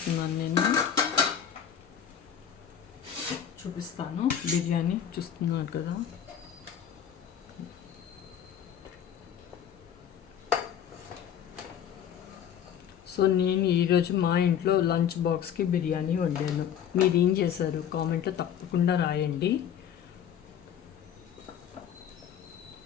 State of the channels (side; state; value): right; quieter; 9.0 dB